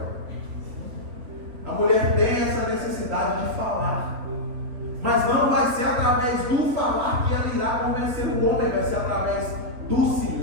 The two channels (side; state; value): left; late; 3.7 ms